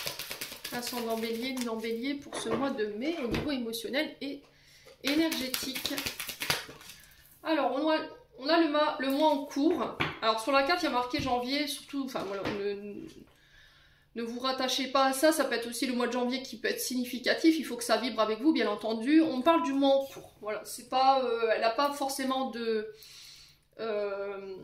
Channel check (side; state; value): both; identical; correlation 1.00